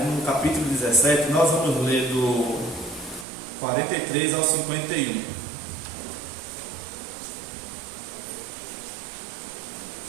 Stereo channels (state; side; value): drops out; left; at 3.2 s